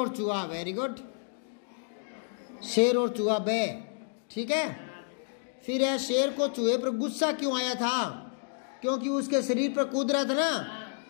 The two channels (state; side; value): silent; right; digital silence